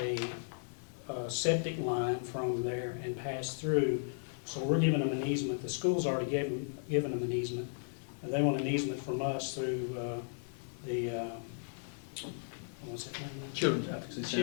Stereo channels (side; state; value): right; silent; 54 dB below the other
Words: septic line from there and pass through, so we're giving them an easement. The school's already given them an easement. They want an easement from us through the, what's that name? Children's Advocacy